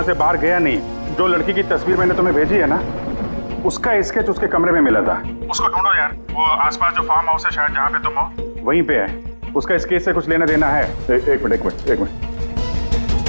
से बाहर गया नहीं। जो लड़की की तस्वीर मैंने तुम्हें भेजी है ना, उसका स्केच उसके कमरे में मिला था। उसको ढूंढो यार, वो आसपास जो फार्म हाउस है शायद जहाँ पे तुम हो, वहीं पे है। उसका स्केच से कुछ लेना देना है। एक मिनट।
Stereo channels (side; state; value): both; inverted; correlation -1.00